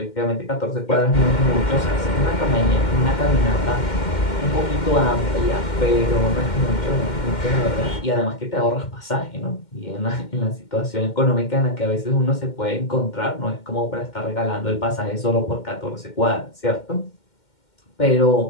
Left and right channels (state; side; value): late; right; 2.1 ms